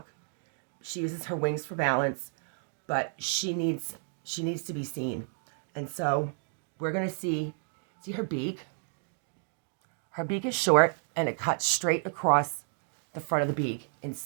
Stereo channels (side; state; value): left; silent; 57 dB below the other